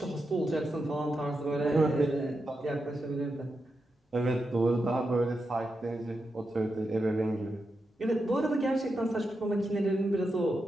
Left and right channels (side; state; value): both; normal; correlation 0.87